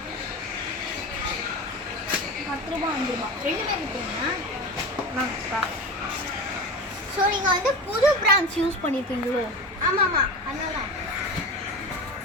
10 ரூபாய் 5 ரூபாய் 2 பேர் இருக்கீங்கன்னா நாங்கப்பா. ஸோ நீங்கள் வந்து புது பிராண்ட்ஸ் யூஸ் பண்ணியிருக்கீங்களோ? ஆமாம் அதனால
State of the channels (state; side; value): normal; both; correlation 0.28